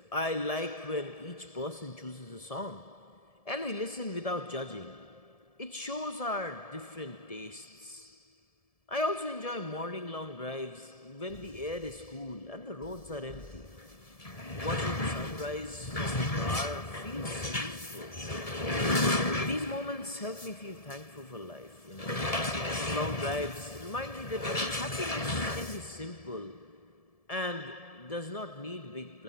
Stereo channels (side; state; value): right; late; 1.7 ms